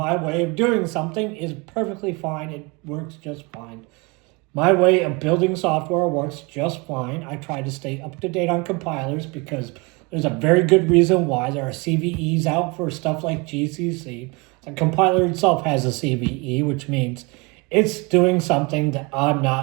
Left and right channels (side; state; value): left; quieter; 28.1 dB